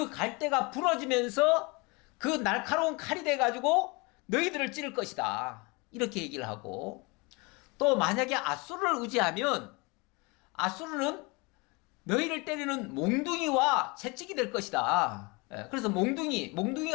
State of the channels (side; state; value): right; quieter; 27.5 dB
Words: 갈대가 부러지면서 그 날카로운 칼이 돼가지고 너희들을 찌를 것이다, 이렇게 얘기를 하고, 또 만약에 아수르를 의지하면 아수르는 너희를 때리는 몽둥이와 채찍이 될 것이다. 그래서